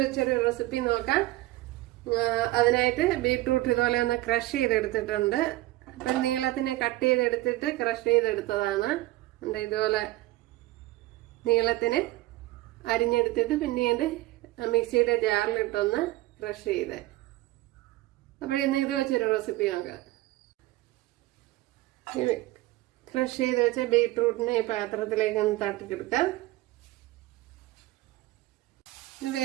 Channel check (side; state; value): left; quieter; 18.0 dB